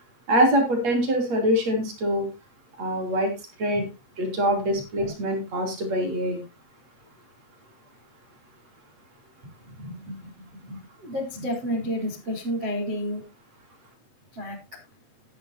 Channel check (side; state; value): left; late; 8.4 ms